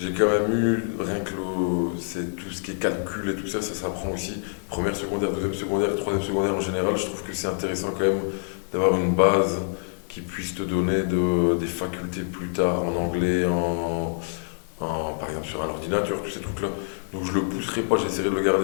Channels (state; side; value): silent; right; digital silence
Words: quand même eu, rien que c'est tout ce qui est calcul et tout ça, ça s'apprend aussi. Première secondaire, deuxième secondaire, troisième secondaire en général, je trouve que c'est intéressant quand même d'avoir une base qui puisse te donner des facultés plus tard en anglais, par exemple sur un ordinateur, tous ces trucs-là. Donc je le pousserai pas, j'essaierai de le